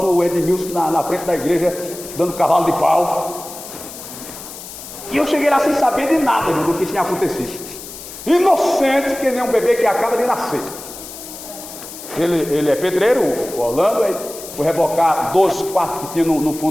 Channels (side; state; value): left; noise; hiss, 13 dB below the sound